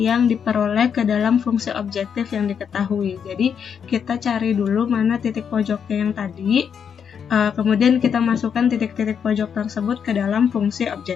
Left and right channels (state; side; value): quieter; right; 7.4 dB